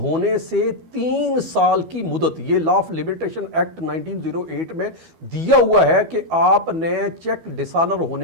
سے 3 سال کی مدت, یہ لا آف لمیٹیشن ایکٹ 1908 میں دیا ہوا ہے کہ آپ نے چیک ڈس آنر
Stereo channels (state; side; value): late; left; 12 ms